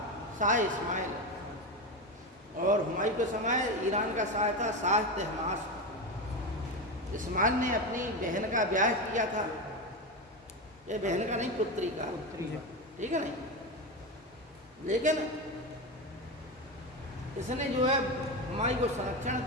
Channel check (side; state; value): both; normal; correlation 0.17